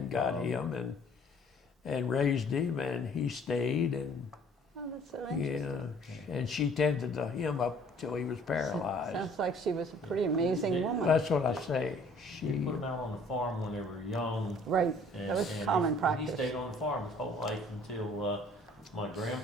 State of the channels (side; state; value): both; normal; correlation 0.56